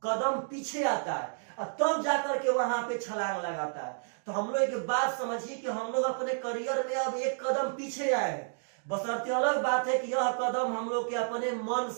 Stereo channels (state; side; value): silent; left; digital silence